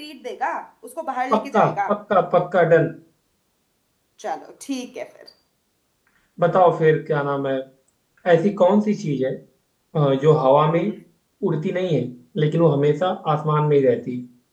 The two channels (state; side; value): identical; both; correlation 1.00